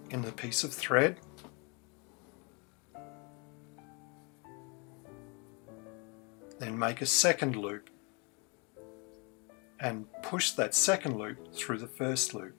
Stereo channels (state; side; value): quieter; right; 32.4 dB